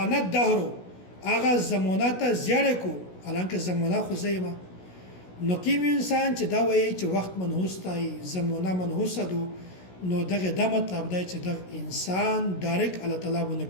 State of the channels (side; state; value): right; late; 16 ms